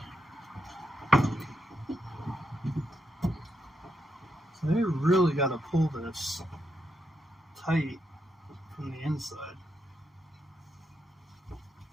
So they really got to pull this tight from the inside.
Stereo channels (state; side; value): normal; both; correlation 0.82